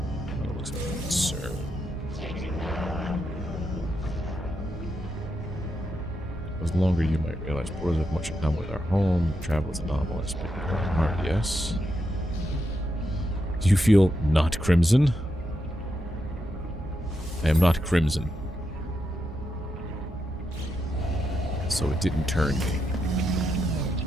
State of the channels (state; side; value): normal; both; correlation 0.84